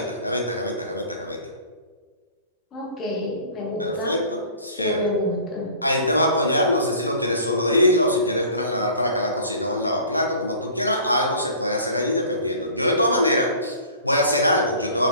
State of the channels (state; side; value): inverted; both; correlation -0.47